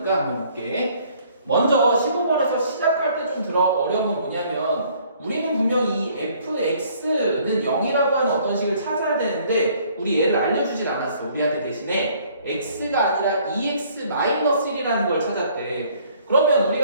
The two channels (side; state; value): both; inverted; correlation -0.60